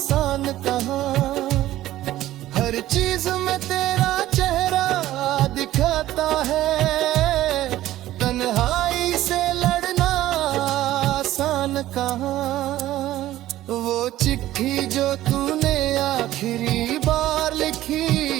कहाँ। हर चीज में तेरा चेहरा दिखाता है, तन्हाई से लड़ना आसान कहाँ। वो चिट्ठी जो तूने आखिरी बार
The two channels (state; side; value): quieter; left; 14.6 dB